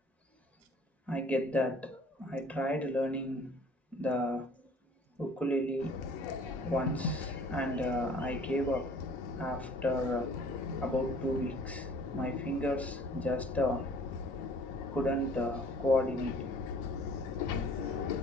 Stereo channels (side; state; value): both; normal; correlation 0.52